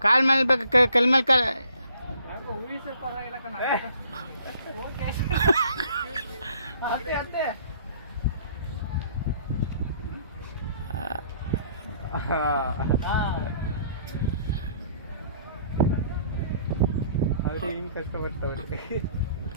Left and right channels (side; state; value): both; inverted; correlation -0.59